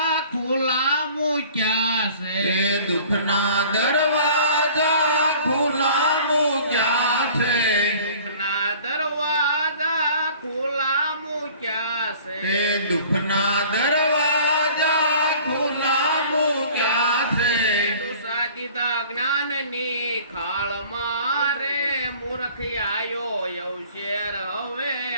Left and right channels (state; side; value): inverted; both; correlation -0.48